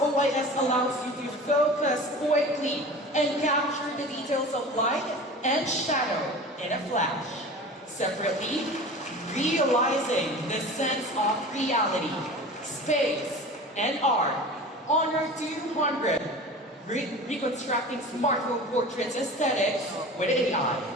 OIS allows you to focus quickly and capture the details of light and shadow in a flash. Separately, realizing the sense of reality, space, and art. Honor 200, reconstructing smartphone portraits aesthetics with AI.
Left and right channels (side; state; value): both; normal; correlation 0.37